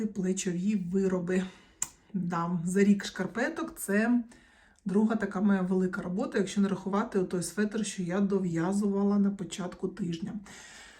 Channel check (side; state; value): both; identical; correlation 1.00